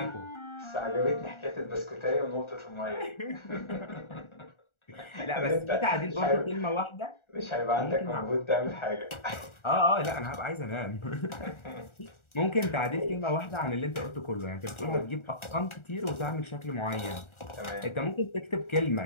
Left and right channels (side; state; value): right; late; 1.4 ms